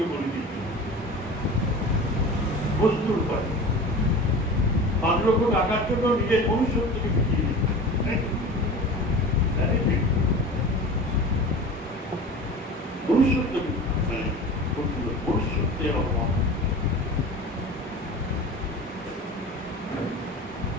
বলে দিচ্ছেন বস্তুর উপায়। 5 লক্ষ টাকার জন্য নিজের মনুষ্যত্বকে বিকিয়ে দিচ্ছেন। মনুষ্যত্বকে মনুষ্যত্বের অপমান,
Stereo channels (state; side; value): normal; both; correlation 0.35